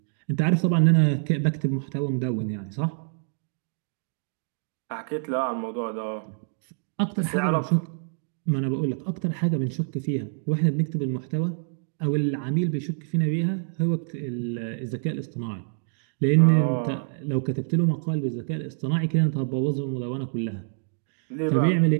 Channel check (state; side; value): silent; left; digital silence